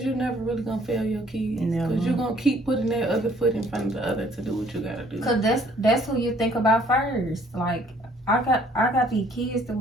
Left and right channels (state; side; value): normal; both; correlation 0.60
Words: you're never really gonna fail your kids. Because you're gonna keep putting that other foot in front of the other to do what you gotta do. Cause that's who you think about first. Like I got these kids to